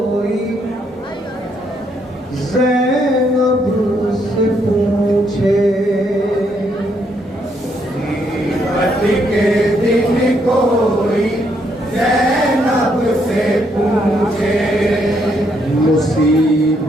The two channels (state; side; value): normal; both; correlation 0.74